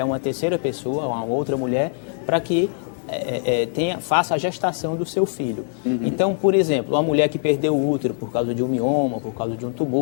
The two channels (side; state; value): right; silent; 55 dB below the other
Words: uma terceira pessoa, a uma outra mulher, para que faça a gestação do seu filho. Então, por exemplo, uma mulher que perdeu o útero por causa de um mioma, por causa de um